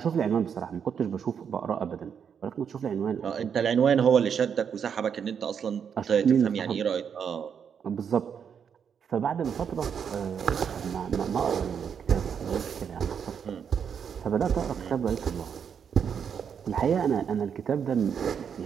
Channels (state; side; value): quieter; left; 7.4 dB